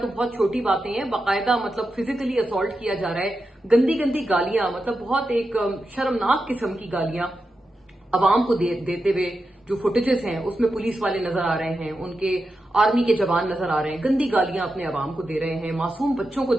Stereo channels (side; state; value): both; normal; correlation 0.89